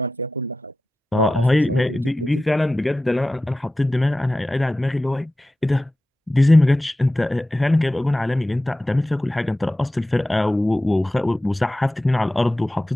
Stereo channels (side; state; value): both; normal; correlation 0.94